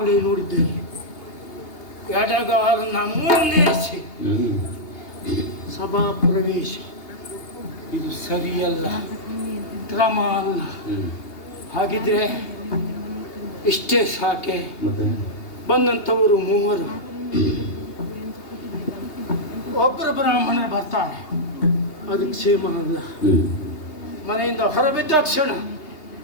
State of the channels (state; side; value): late; right; 2.8 ms